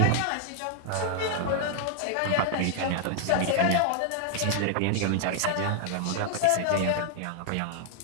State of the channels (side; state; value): both; different; correlation 0.00